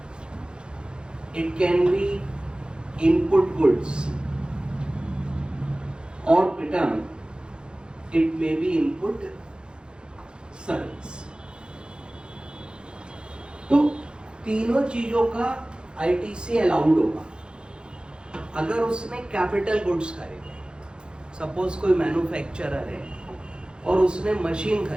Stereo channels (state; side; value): late; left; 0.050 ms